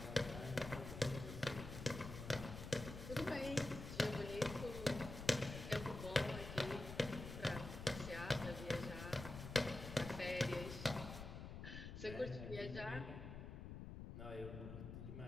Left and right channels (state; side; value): noise; left; rumble, 8 dB below the sound